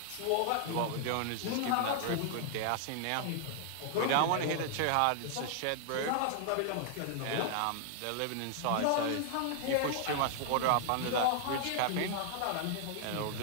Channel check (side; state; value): both; different; correlation 0.00